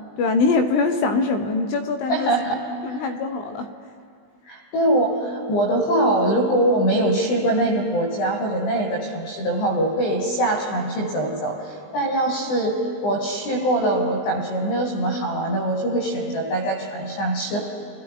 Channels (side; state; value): right; late; 20 ms